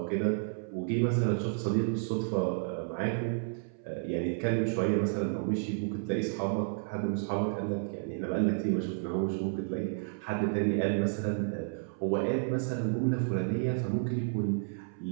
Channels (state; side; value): silent; left; 57 dB below the other